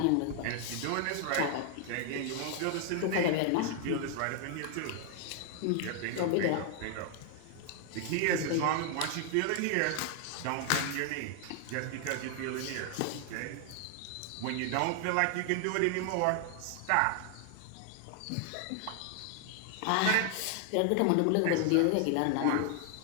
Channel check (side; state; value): both; different; correlation 0.00